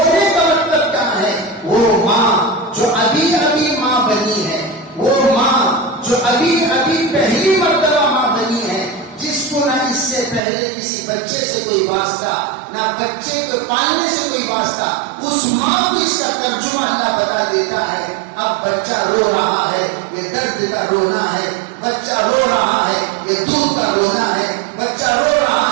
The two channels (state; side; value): drops out; left; at 10.4 s